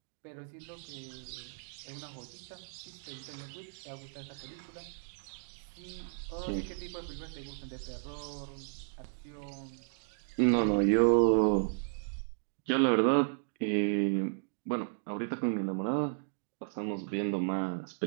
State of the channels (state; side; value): silent; left; digital silence